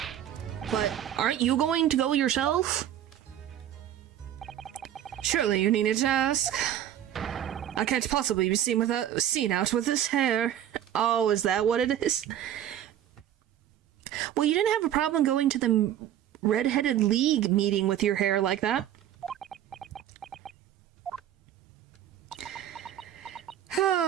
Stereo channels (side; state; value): left; quieter; 11.2 dB